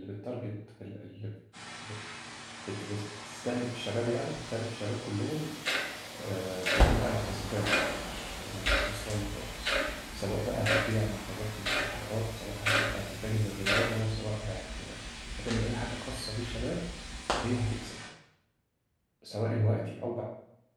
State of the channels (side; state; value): both; identical; correlation 1.00